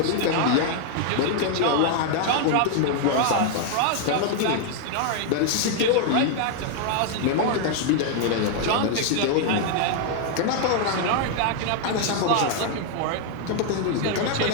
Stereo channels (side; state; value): both; different; correlation 0.00